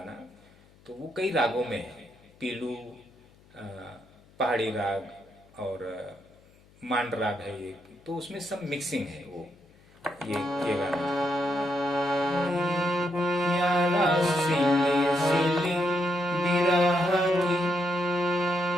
तो वो कई रागों में है, पीलू, पहाड़ी राग और मांड राग है एक, तो उसमें सब मिक्सिंग है वो। ये गाना यारा सिले सिले बिरह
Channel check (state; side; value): noise; left; hum, 28 dB below the sound